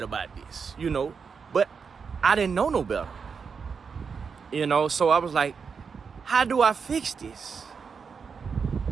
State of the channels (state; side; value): quieter; left; 5.8 dB